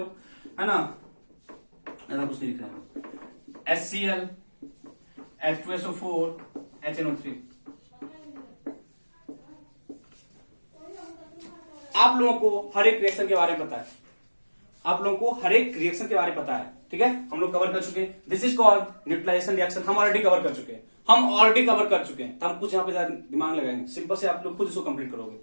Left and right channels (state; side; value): inverted; both; correlation -1.00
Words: है ना, ऐसा कुछ नहीं लिख रहा है। HCl, H2SO4, HNO3। आप लोगों को हर एक रिएक्शन के बारे में पता है, ठीक है? हम लोग कवर कर चुके हैं। This is called neutralization reaction. हम ऑलरेडी कवर कर चुके हैं, तो हम कुछ यहाँ पे दिमाग लगाएंगे। सिंपल से आप लोग खुद इसको कंप्लीट करोगे।